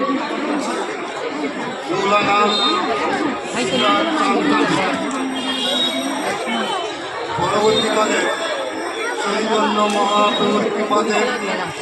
পরবর্তীকালে চৈতন্য মহাপ্রভুর কৃপাতে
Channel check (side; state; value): both; identical; correlation 1.00